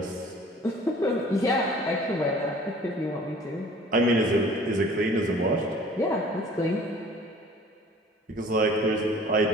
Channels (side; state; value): both; normal; correlation 0.49